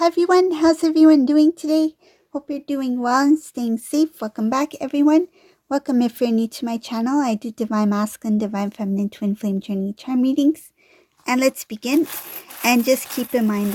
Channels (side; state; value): both; identical; correlation 1.00